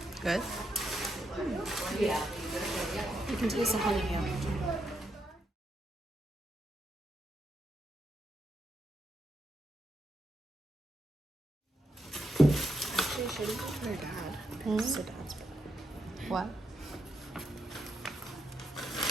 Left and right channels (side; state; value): both; normal; correlation 0.82